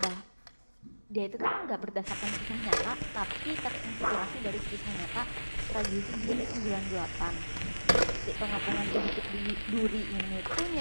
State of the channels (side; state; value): both; inverted; correlation -1.00